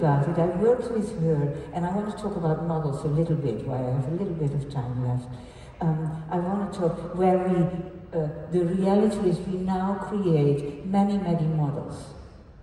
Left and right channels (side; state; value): both; identical; correlation 1.00